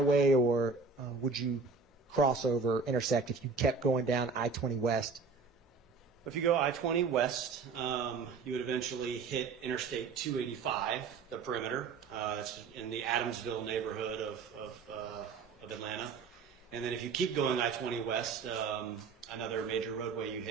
or would you cross over, intersect if you kept going down I-20 West If you go I-20 west, you would eventually hit Interstate 285, the perimeter. That's in the Adamsville neighborhood of Atlanta. And then if you keep going I-20 west, another major roadway you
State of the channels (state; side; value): quieter; left; 4.8 dB